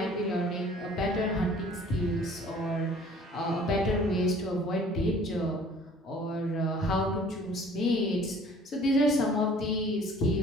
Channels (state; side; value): normal; both; correlation 0.52